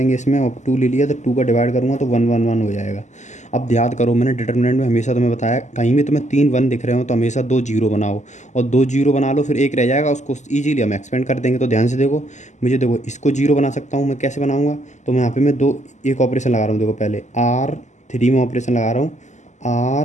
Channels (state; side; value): late; right; 0.34 ms